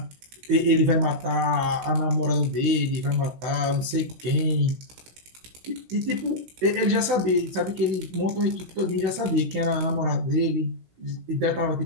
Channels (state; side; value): late; left; 16 ms